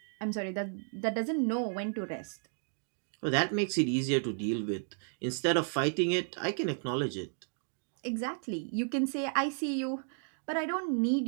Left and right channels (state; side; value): silent; left; 56 dB below the other